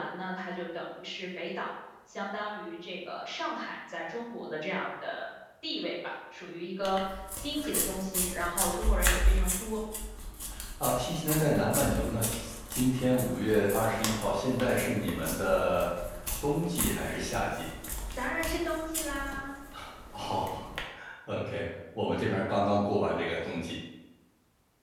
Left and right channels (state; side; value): identical; both; correlation 1.00